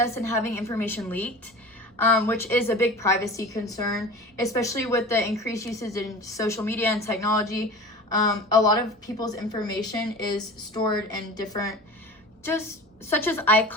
and having information leaked, which is a big privacy concern, especially with the increased usage in social media and technology. A lot of people's information is stored in different, just such as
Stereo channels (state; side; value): normal; both; correlation 0.36